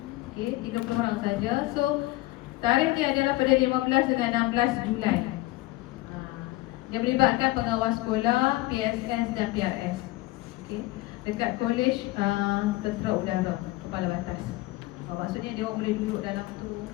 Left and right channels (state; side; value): quieter; right; 18.8 dB